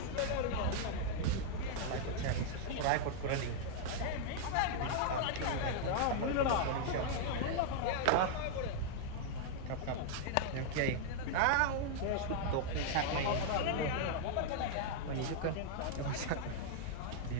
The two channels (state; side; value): different; both; correlation -0.01